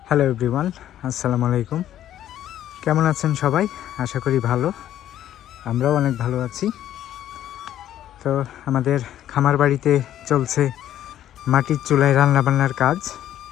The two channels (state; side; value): quieter; right; 11.8 dB